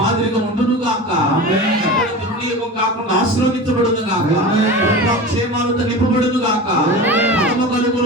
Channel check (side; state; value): both; normal; correlation 0.31